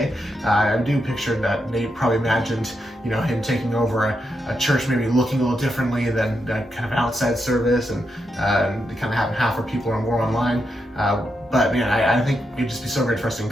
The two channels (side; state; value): both; normal; correlation 0.84